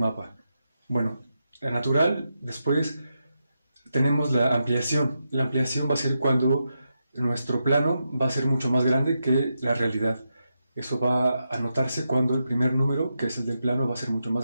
Bueno, la natural, después tenemos la ampliación. La ampliación va a ser cuando nuestro plano va a ser mucho más grande que la realidad. Eso va a notarse cuando el primer número, que es el del plano, va a ser mucho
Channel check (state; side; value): inverted; both; correlation -0.86